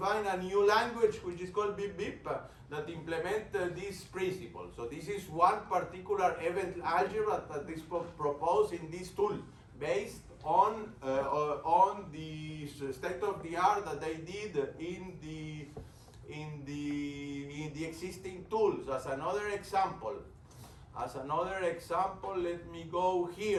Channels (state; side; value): identical; both; correlation 1.00